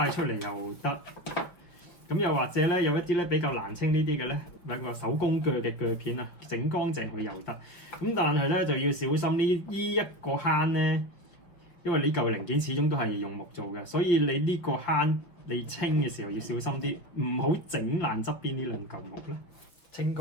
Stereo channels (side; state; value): right; late; 5.5 ms